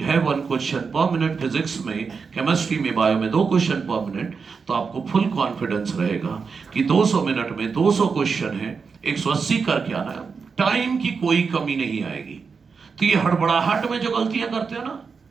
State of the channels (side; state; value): left; quieter; 5.3 dB